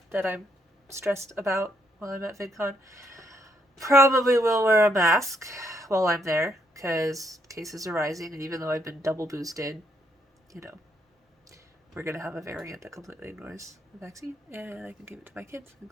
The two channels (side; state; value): both; normal; correlation 0.74